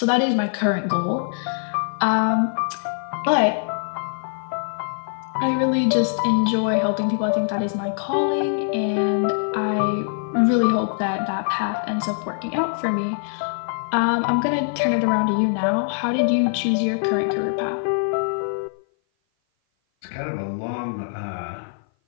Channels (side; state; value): right; silent; 56 dB below the other